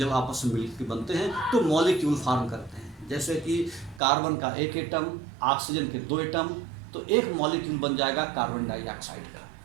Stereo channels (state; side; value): drops out; left; at 4.0 s